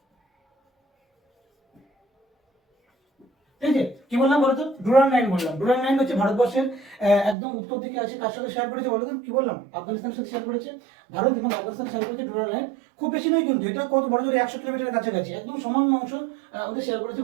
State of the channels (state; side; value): drops out; left; at 7.4 s